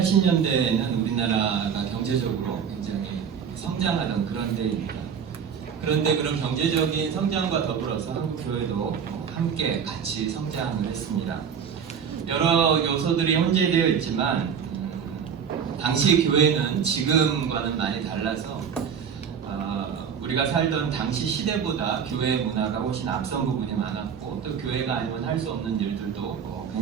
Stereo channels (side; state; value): left; quieter; 7.2 dB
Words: 우리나라가 경제적으로 굉장히 성장하던 그런 때입니다. 그런데 그런 경제적인 성장과 더불어서 한국교회도 함께 같이 성장을 했습니다. 여러 요소들이 혼재되어 있지만 당시 교회는 지금과는 많이 달라서 우리가 살던 당시 시대보다 교회의 문화가 훨씬 앞선 부분이 많았고 또 교회가 아니면 할 수 없는 일들도